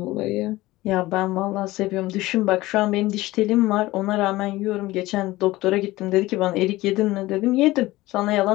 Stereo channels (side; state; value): right; quieter; 18.4 dB